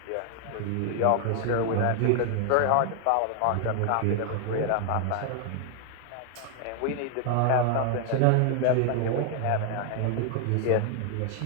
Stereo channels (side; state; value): both; different; correlation 0.00